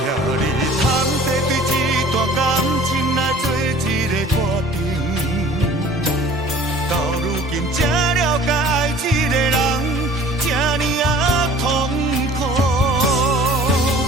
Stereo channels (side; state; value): both; normal; correlation 0.47